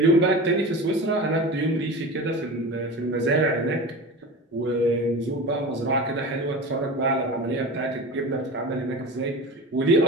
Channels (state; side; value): normal; both; correlation 0.31